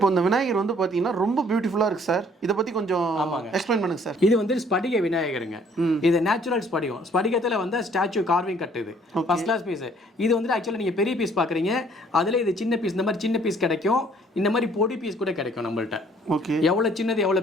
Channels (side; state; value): both; normal; correlation 0.60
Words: இந்த விநாயகர் வந்து பாத்தீங்கன்னா ரொம்ப பியூட்டிஃபுல்லா இருக்கு சார். இத பத்தி கொஞ்சம் எக்ஸ்பிளைன் பண்ணுங்க சார். இது வந்து ஸ்படிக விநாயகருங்க. இது நேச்சுரல் ஸ்படிகம். ஸ்படிகத்துல வந்து ஸ்டாச்சு கார்விங் கட். இது ஃபர்ஸ்ட் கிளாஸ் பீஸ். இது வந்து ஆக்சுவலா நீங்க பெரிய பீஸ் பாக்குறீங்க, அதுல இது சின்ன பீஸ். இந்த மாதிரி சின்ன பீஸ் கிடைக்கும், இந்த மாதிரி பொடி பீஸ் கூட கிடைக்கும் நம்மள்ட்ட. ஓகே. எவ்வளவு சின்னது